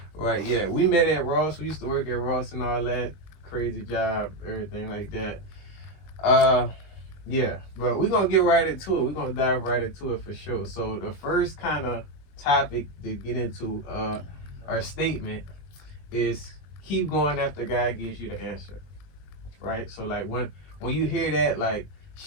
Right, yeah. We met at Ross. We used to work at Ross and all that. Crazy job, everything like that. Yeah, but we're gonna get right into it. We're gonna dive right into it for sure. So the first kind of topic to get into our statement is keep going after God gives you the answer. Right? So like when you hear that, like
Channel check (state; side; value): late; right; 21 ms